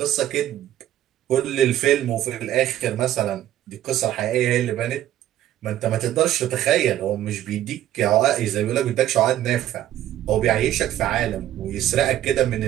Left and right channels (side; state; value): left; quieter; 12.6 dB